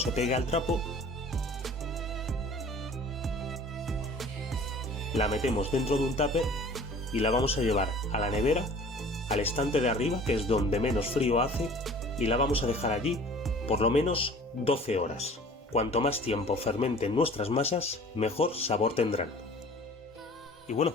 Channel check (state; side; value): normal; both; correlation 0.46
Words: pegue al trapo, la metemos dentro de un tupper y la vamos a llevar a la nevera al estante de arriba, que es donde menos frío hace, y la vamos a dejar allí por lo menos 12 horas. Cuanto más tiempo fermenten nuestras masas, mejor sabor tendrán. Y bueno,